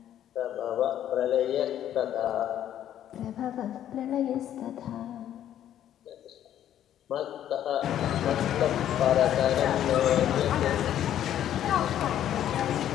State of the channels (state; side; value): quieter; right; 11.1 dB